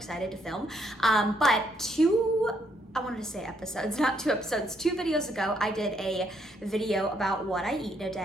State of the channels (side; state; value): both; normal; correlation 0.72